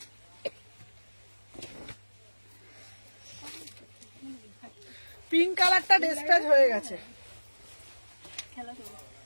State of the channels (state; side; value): inverted; both; correlation -1.00